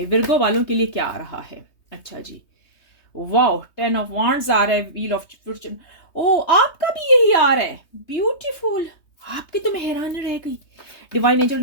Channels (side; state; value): right; late; 3.2 ms